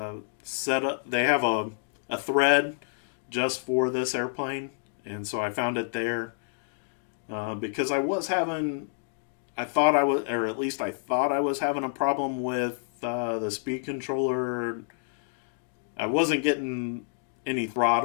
setup. They have a thread just for this airplane, and so I found it there because I thought I was having a problem with the speed controller. I wasn't getting any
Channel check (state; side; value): silent; right; digital silence